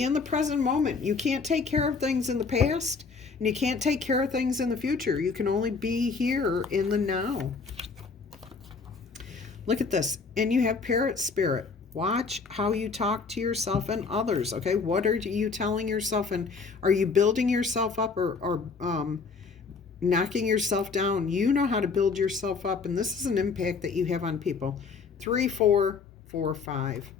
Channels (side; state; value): right; quieter; 4.8 dB